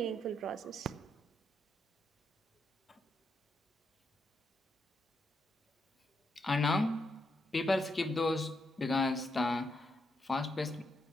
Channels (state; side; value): normal; both; correlation 0.81